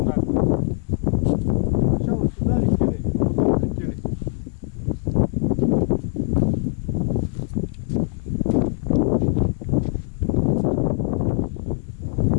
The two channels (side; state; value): right; silent; 59 dB below the other